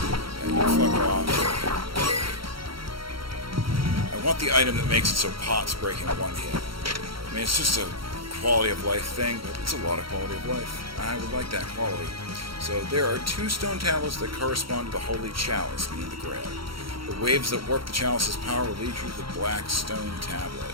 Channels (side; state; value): left; late; 0.74 ms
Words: And you fuck off. I want the item that makes it so pots break in one hit. I mean, it's just a quality of life thing, but it's a lot of quality of life. I would like that quality. So there are 2 stone tablets that correspond to the Holy Chalice, meaning the Grail. The waves that warp the chalice's power will lead you to the Black Stone Tablet.